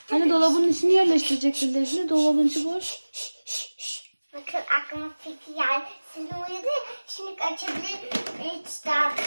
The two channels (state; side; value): inverted; both; correlation -1.00